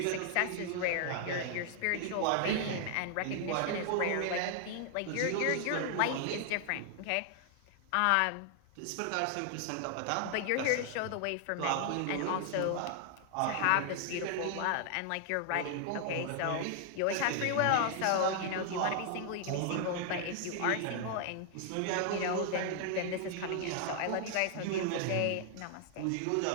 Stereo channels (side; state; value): both; different; correlation 0.00